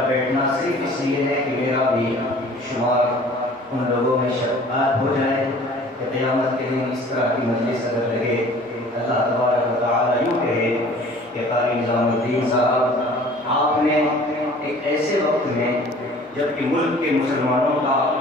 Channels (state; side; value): normal; both; correlation 0.49